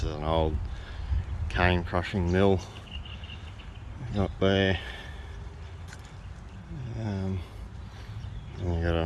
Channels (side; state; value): both; identical; correlation 1.00